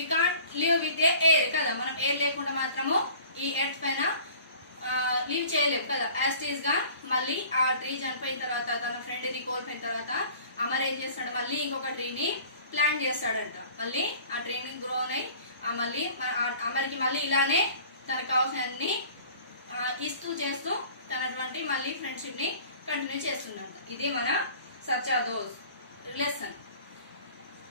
can't live with a air కదా. మనం ఎయిర్ లేకుండా మాత్రము ఈ ఎర్త్ పైన లీవ్ చేయలేము కదా. యాస్టీస్ గా మళ్ళీ ఆ ట్రీ చనిపోయిన తర్వాత, తన ఫ్రెండ్ ని కోల్పోయిన తర్వాత అమర్ ఏం చేస్తాడు, మళ్ళీ ఇంకొక ట్రీని ప్లాంట్ చేస్తాడంట. మళ్ళీ ఆ ట్రీని గ్రో అయి మళ్ళీ అమర్కి మళ్ళీ ఇలానే తనకు కావాల్సిన అన్ని ఇస్తూ చేస్తూ తనటువంటి మళ్ళీ ఫ్రెండ్షిప్ ని కంటిన్యూ చేస్తుందంట. ఇది మన సచ్చా దోస్త్ లెసన్.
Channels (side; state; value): both; inverted; correlation -0.48